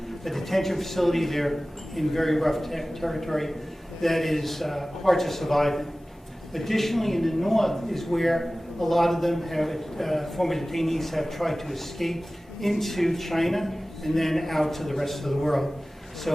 a detention facility, they're in very rough territory that is hard to survive in. Additionally, in the north is where a lot of them have, former detainees have tried to escape into China and then out to the rest of the world.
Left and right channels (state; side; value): normal; both; correlation 0.97